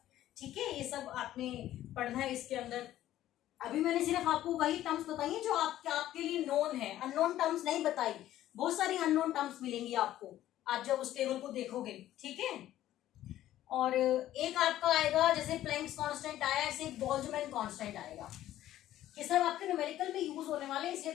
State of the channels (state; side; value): quieter; right; 13.3 dB